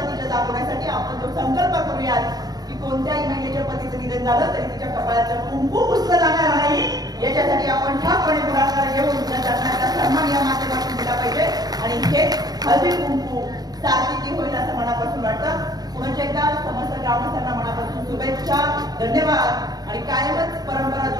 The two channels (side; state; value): left; late; 0.19 ms